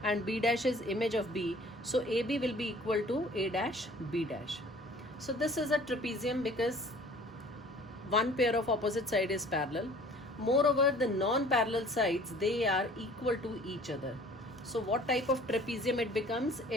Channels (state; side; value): normal; both; correlation 0.50